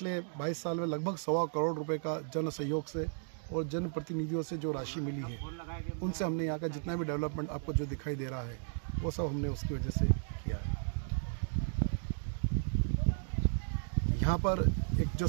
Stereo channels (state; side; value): silent; left; digital silence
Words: 22 साल में लगभग 1.25 करोड़ रुपए का जन सहयोग से और जन प्रतिनिधियों से जो राशि मिली है, उनसे हमने यहाँ का जितना भी डेवलपमेंट आपको जो दिखाई दे रहा है वो सब हमने उसकी वजह से किया है। यहाँ पर एक जो